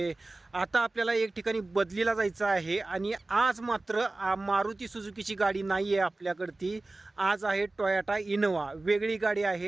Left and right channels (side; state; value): left; quieter; 3.0 dB